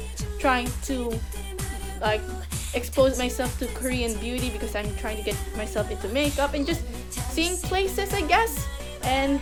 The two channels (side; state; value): both; identical; correlation 1.00